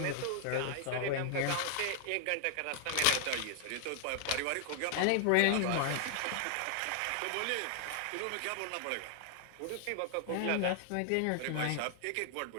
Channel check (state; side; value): different; both; correlation 0.00